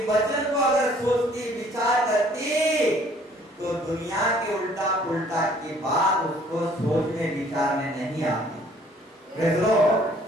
वचन को अगर सोचती, विचार करती, तो दुनिया के उल्टा पुल्टा की बात उसको सोचने विचारने नहीं आती। Praise the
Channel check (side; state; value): both; normal; correlation 0.58